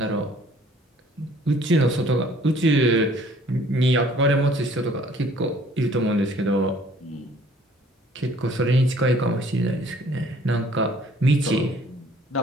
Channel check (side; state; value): both; normal; correlation 0.57